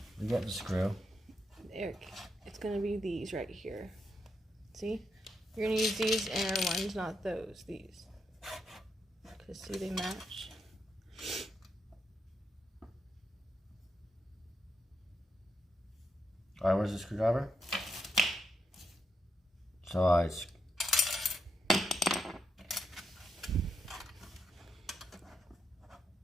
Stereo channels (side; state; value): both; normal; correlation 0.81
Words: We got the screw. Eric, it's gonna be these right here. See? You're gonna use these inner ones, not those. These. Because see, they match. Alright, where's the screwdriver? So I...